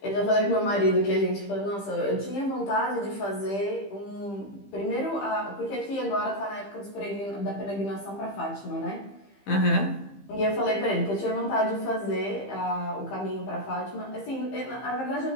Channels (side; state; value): right; late; 15 ms